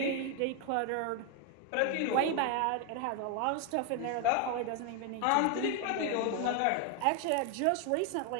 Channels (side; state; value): both; different; correlation 0.01